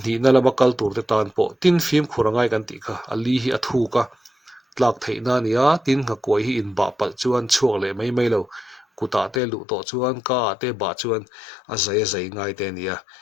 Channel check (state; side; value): drops out; right; at 9.4 s